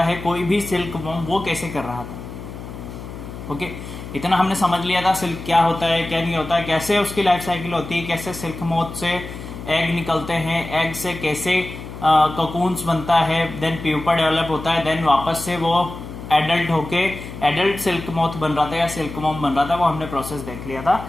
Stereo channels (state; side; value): noise; left; hum, 11 dB below the sound